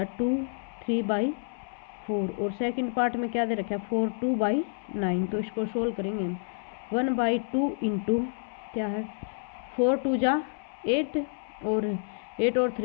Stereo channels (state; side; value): silent; right; 59 dB below the other